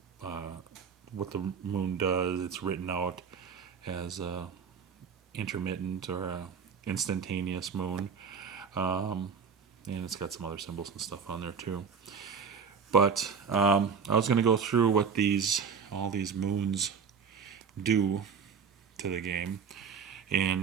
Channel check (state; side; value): quieter; left; 6.3 dB